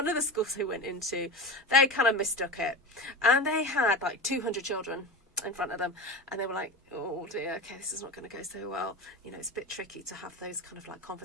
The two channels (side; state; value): both; normal; correlation 0.25